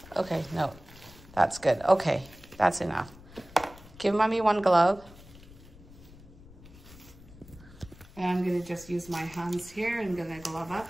Okay, no. That's good. Okay, that's enough. Give mommy 1 glove. And I'm gonna just use my hands here. I'm gonna glove up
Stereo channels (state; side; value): noise; left; rumble, 20 dB below the sound